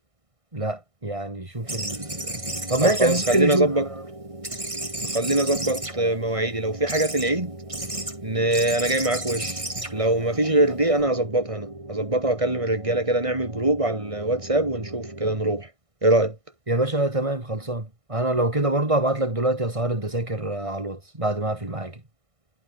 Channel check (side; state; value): left; late; 1.6 ms